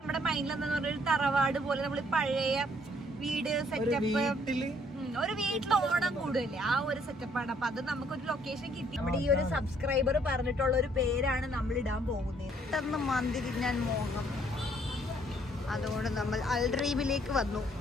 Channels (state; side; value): normal; both; correlation 0.65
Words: മൈൻഡിലെന്ന് പറഞ്ഞൊരു തറവാട് പോലെ നമ്മൾ പഴയ വീട് സെറ്റപ്പ് ഒരു വീട്ടിൽ ഓണം കൂടുതലേ ആ ഒരു സെറ്റപ്പാണ്. അപ്പൊ അത് നമുക്കൊരു ലൊക്കേഷൻ കിട്ടി. നമ്മുടെ ഈ ഒരു സബ്സ്ക്രൈബർ പറഞ്ഞിട്ടുള്ള ഒരു പേരാണ് നമ്മൾ ഇടാൻ പോകുന്നത്. പെട്ടെന്ന് മന്തി തിന്നാൻ മോഹം, അതുകൊണ്ട് നമ്മൾ അൽഡ്രീമിലേക്ക് വന്നു.